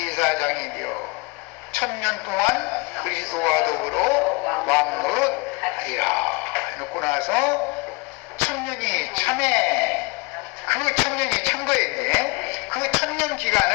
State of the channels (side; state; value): right; quieter; 27.9 dB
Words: 되어 1000년 동안 그리스도와 더불어 왕노릇 하리라 해놓고 나서 1000년이 참에, 그 1000년이 참 거인데, 그 1000년